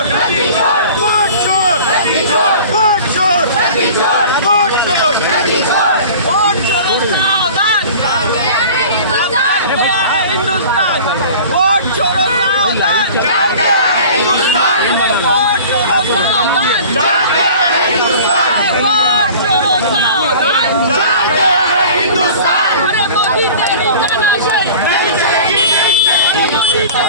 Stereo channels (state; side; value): inverted; both; correlation -0.42